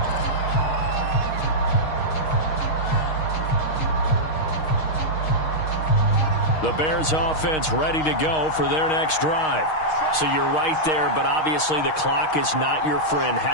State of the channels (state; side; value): late; right; 6.4 ms